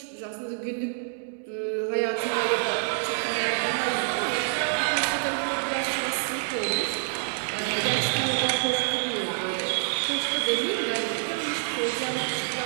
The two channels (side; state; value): left; silent; digital silence